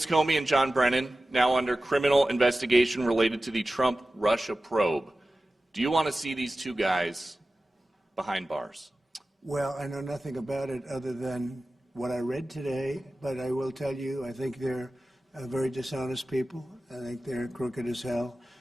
Comey and John Brennan, now under criminal investigation related to the Trump-Russia probe. Do you want to see these two guys behind bars? Well, I know nothing about it other than what I read today, but I will tell you, I think they're very dishonest people. I think they're crooked as hell,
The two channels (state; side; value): normal; both; correlation 0.95